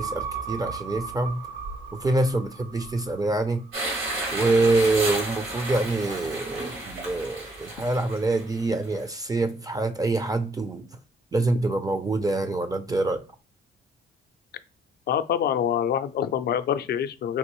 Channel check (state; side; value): normal; both; correlation 0.66